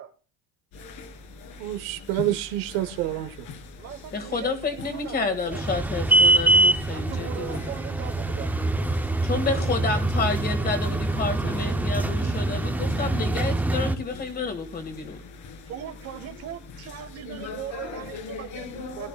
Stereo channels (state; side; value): normal; both; correlation 0.41